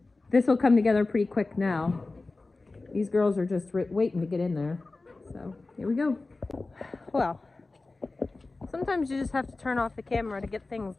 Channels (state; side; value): quieter; right; 3.4 dB